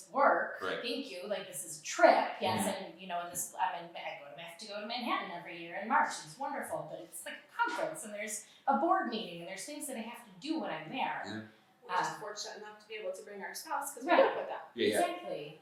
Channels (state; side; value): identical; both; correlation 1.00